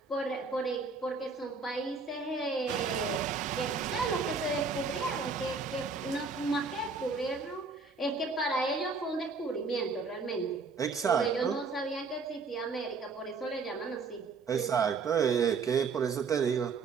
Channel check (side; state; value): left; quieter; 4.6 dB